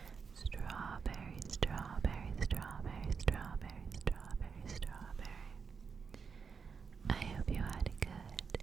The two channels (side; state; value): left; quieter; 5.8 dB